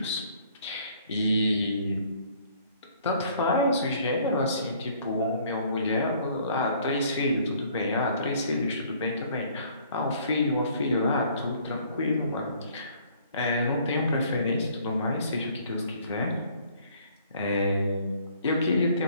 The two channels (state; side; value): inverted; both; correlation -0.59